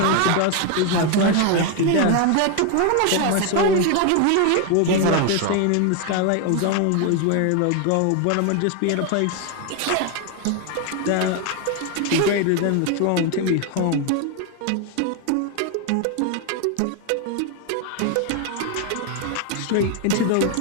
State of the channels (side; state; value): both; different; correlation 0.01